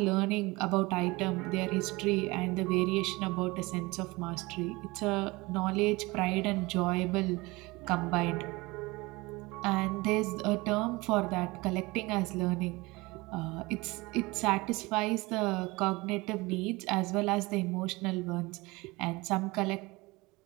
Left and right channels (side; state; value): left; quieter; 23.0 dB